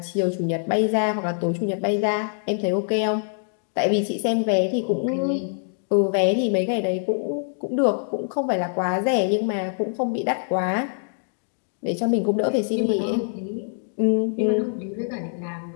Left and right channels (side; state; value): right; silent; digital silence